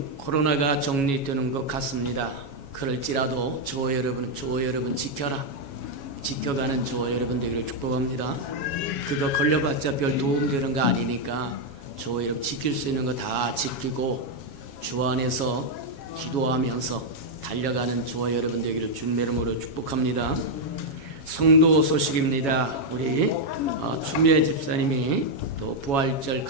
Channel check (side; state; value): right; late; 7.2 ms